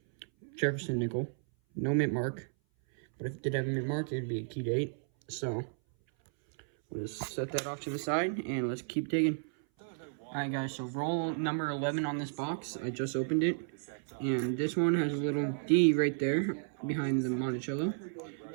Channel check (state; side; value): silent; left; 56 dB below the other